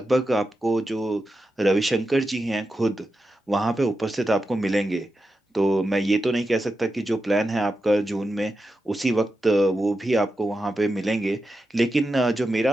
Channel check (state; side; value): normal; both; correlation 0.89